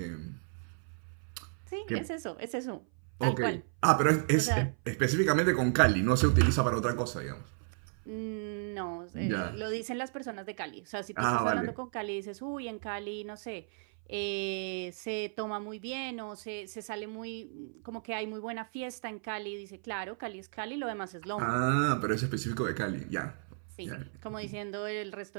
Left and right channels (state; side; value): silent; left; 55 dB below the other